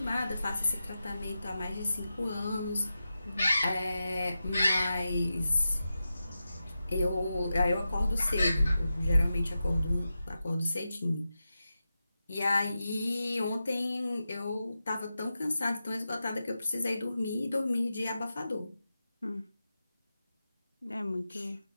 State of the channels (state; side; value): inverted; both; correlation -0.91